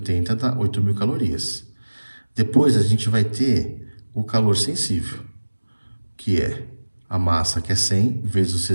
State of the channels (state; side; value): inverted; both; correlation -1.00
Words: dá 8.000 calorias. Depois, a gente vai ter o calor sensível, que é a massa, que é 100, vezes o